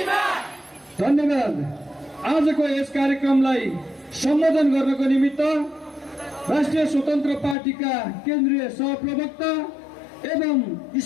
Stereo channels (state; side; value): drops out; right; at 7.6 s